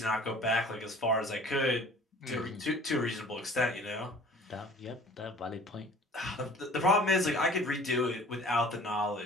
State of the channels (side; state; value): both; normal; correlation 0.48